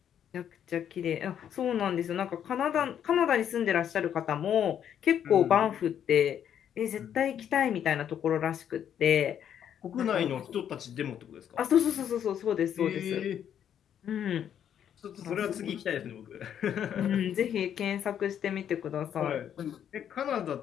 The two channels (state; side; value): quieter; right; 9.3 dB